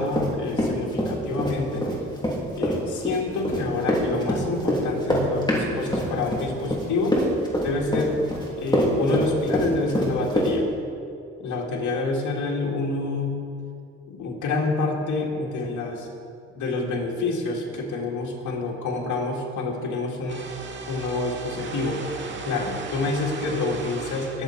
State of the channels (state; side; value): normal; both; correlation 0.43